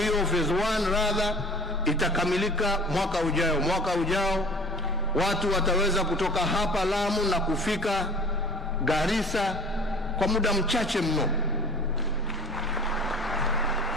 phase 1 rather, itakamilika mwaka ujao. Mwaka ujao watu wataweza kutoka hapa Lamu na kufika Garissa kwa muda mchache mno.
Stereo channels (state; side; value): noise; right; hum, 22 dB below the sound